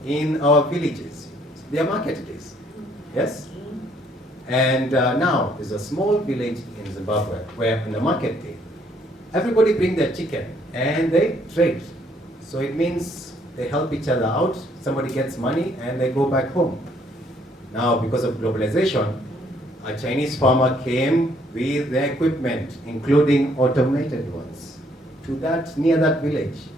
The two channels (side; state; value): both; normal; correlation 0.66